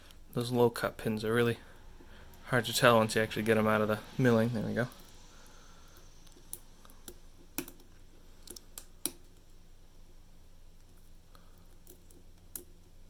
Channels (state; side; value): identical; both; correlation 1.00